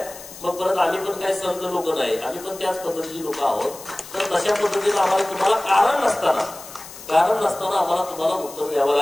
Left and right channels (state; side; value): noise; left; hiss, 16 dB below the sound